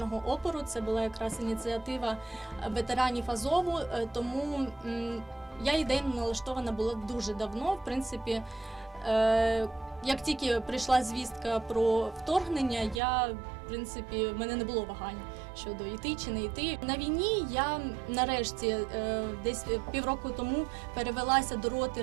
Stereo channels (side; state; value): left; drops out; at 13.0 s